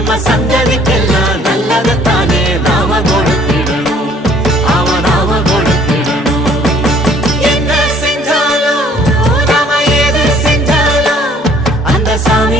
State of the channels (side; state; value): both; normal; correlation 0.58